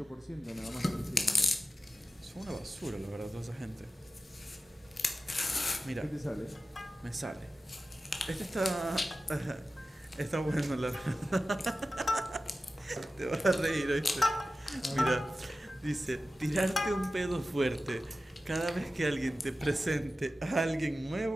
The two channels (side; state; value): both; normal; correlation 0.94